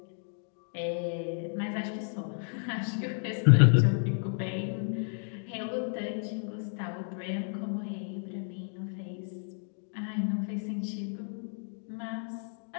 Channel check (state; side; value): silent; right; 57 dB below the other